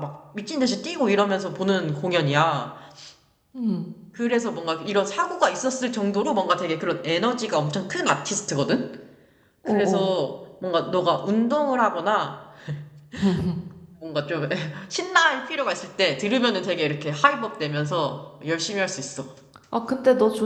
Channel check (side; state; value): both; identical; correlation 1.00